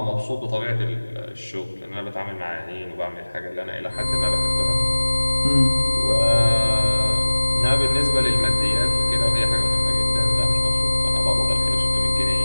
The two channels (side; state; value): both; inverted; correlation -1.00